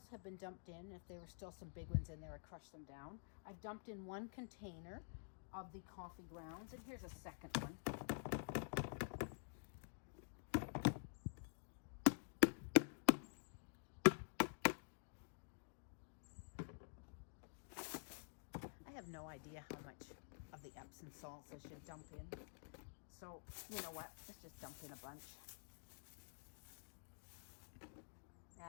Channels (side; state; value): right; silent; digital silence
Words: have been dumped in. If there were still some big ones in there, I crushed them down. I've dumped in one container of the coffee grounds, and here's a second one. I have no idea how much of the Epsom salts I should dump in. So, you know what? Let's just dump in a bunch.